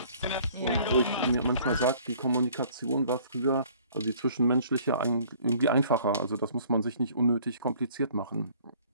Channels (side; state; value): both; inverted; correlation -0.55